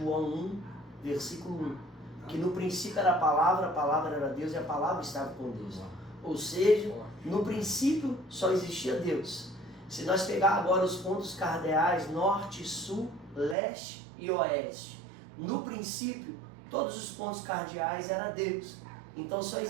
1, versículo 1. Que no princípio era a palavra era Deus e a palavra estava com Deus. Ou seja, no princípio só existia Deus. Se nós pegar agora os pontos cardeais norte, sul, leste e oeste, no princípio todos os pontos cardeais eram Deus. Então só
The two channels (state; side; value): drops out; left; at 13.6 s